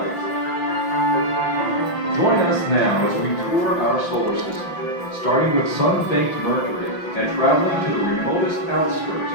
Join us now as we tour our solar system, starting with sun-baked Mercury and traveling to the remotest outskirts,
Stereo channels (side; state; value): right; late; 5.8 ms